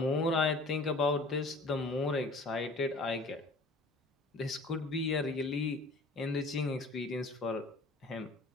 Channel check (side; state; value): right; quieter; 3.1 dB